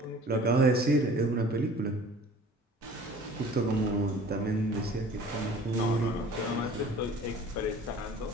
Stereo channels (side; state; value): both; normal; correlation 0.46